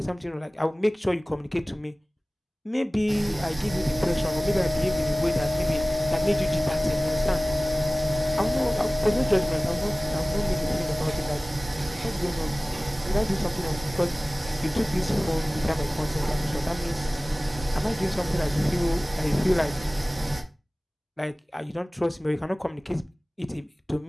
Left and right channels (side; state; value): both; normal; correlation 0.98